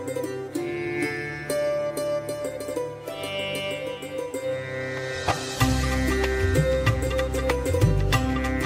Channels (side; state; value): both; identical; correlation 1.00